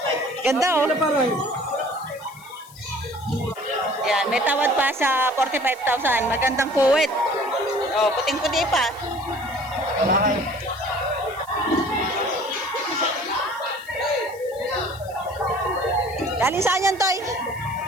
Ganda, oh. Yan, may tawad pa sa 45,000. Magandang puwet. Oh, puting-puti pa. Galing saan yan, Toy?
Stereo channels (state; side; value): noise; left; hiss, 22 dB below the sound